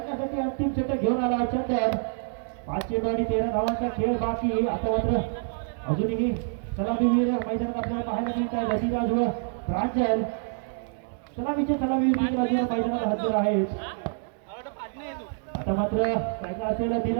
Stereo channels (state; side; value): silent; left; digital silence